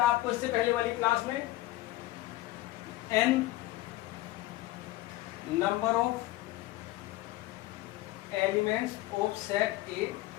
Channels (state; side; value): quieter; right; 17.5 dB